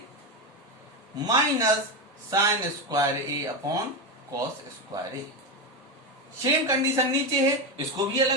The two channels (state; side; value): normal; both; correlation 0.12